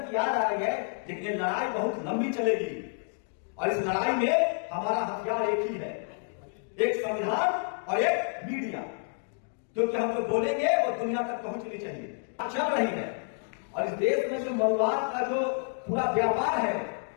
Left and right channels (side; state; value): right; silent; 58 dB below the other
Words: की याद आ रही है, लेकिन ये लड़ाई बहुत लंबी चलेगी। और इस लड़ाई में हमारा हथियार एक ही है, एक संविधान और एक मीडिया, क्योंकि हम जो बोलेंगे वो दुनिया तक पहुंचनी चाहिए। चल रही है। और इस देश में जो मनुवाद का जो पूरा व्यापार है